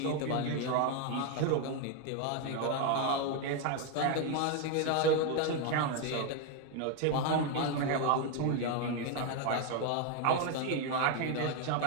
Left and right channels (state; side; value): different; both; correlation 0.01